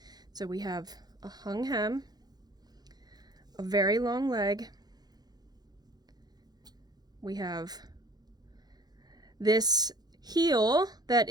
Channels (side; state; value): left; late; 0.19 ms